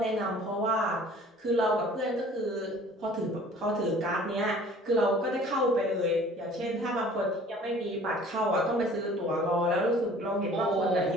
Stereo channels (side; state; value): both; normal; correlation 0.50